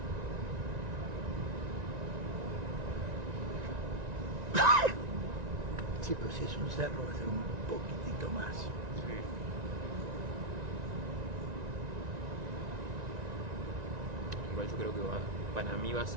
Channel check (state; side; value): late; left; 1.9 ms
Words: Sí, pero si es un cerro va a ser un poquitito más. Sí. Igual yo creo que para mí va a